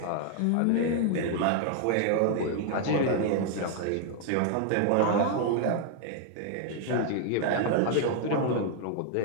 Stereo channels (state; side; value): different; both; correlation 0.00